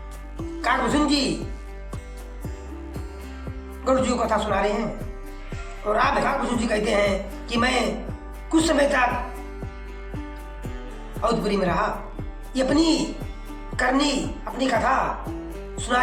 काकभूषण जी गरुड़ जी को कथा सुना रहे हैं। और आप काकभूषण जी कहते हैं कि मैं कुछ समय तक अवधपुरी में रहा। ये अपनी करनी, अपनी कथा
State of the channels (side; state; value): both; identical; correlation 1.00